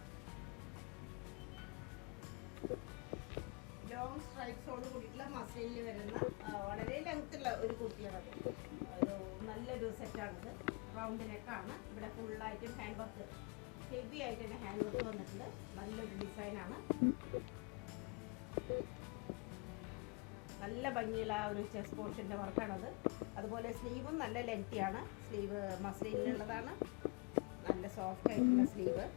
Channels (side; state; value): right; quieter; 29.6 dB